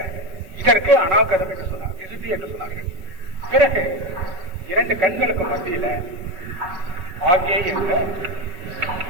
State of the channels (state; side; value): late; left; 5.4 ms